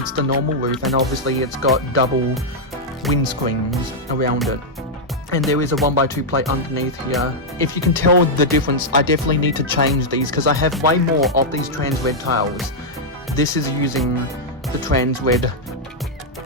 the normal roof, and obviously it's got double windscreens around it. And there is a 1x2 plate underneath here. If you can tell the difference, I definitely need to change these because I have way more of these trans red tiles. This is using the trans red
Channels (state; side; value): normal; both; correlation -0.03